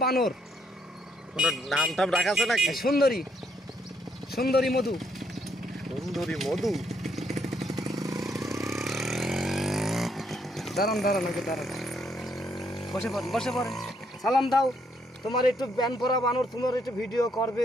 বানর। ওনার নাম টাম রাখা আছে নাকি? সুন্দরী, সুন্দরী মধু। সুন্দরী মধু। দাঁড়ান দাঁড়ান, আগে দাঁড়ান, বসে পড়েন, বসে পড়েন। সালাম দাও। তোমার একটু ব্যান পরা বানর, তোমার একটু ভিডিও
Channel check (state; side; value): normal; both; correlation 0.73